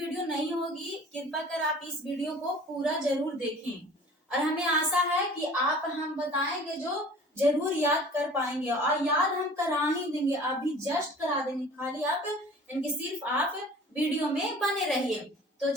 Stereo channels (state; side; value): normal; both; correlation 0.46